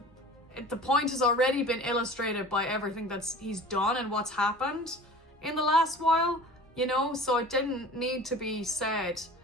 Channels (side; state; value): both; normal; correlation 0.41